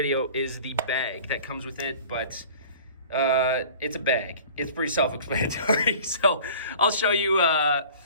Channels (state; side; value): inverted; both; correlation -0.45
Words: is the bag that comes with it, but it's a bag. It's pretty self-explanatory. So I'll show you